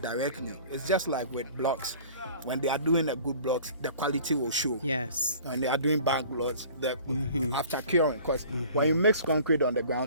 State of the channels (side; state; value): both; inverted; correlation -0.47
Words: directly. It's just like with blocks. When they are doing a good blocks, the quality will show. Yes. When they are doing bad blocks, after curing, because when you mix concrete on the